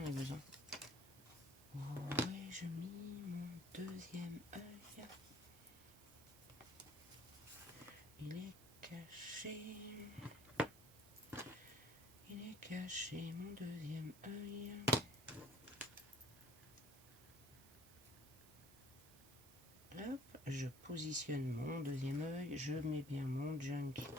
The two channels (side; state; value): right; noise; hiss, 20 dB below the sound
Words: ai besoin. Où ai-je mis mon deuxième œil? Il est caché. Il est caché, mon deuxième œil. Hop, je positionne mon deuxième œil. Je mets bien mon junk.